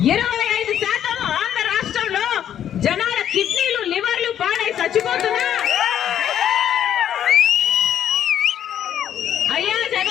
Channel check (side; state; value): right; quieter; 10.2 dB